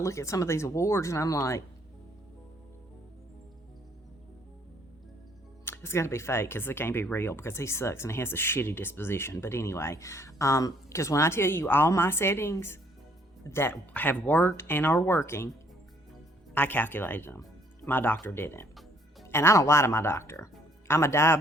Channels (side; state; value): both; normal; correlation 0.64